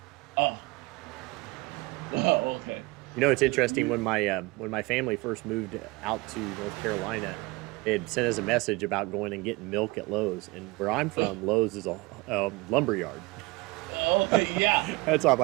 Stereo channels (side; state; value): left; quieter; 23.7 dB